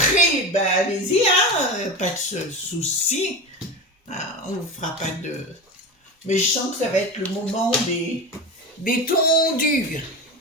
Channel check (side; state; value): both; normal; correlation 0.24